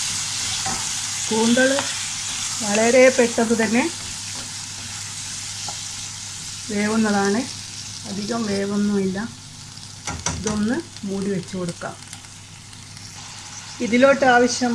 കൂന്തൽ വളരെ പെട്ടെന്ന് തന്നെ വേവുന്നതാണ്, അധികം വേവൊന്നുമില്ല. ഇതൊന്ന് മൂടി വെച്ച് കൊടുക്കാം. ഇതിലോട്ട്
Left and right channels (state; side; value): identical; both; correlation 1.00